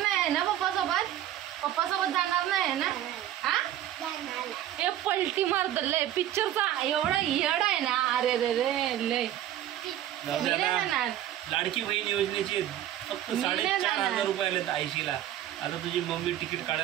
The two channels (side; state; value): left; quieter; 12.2 dB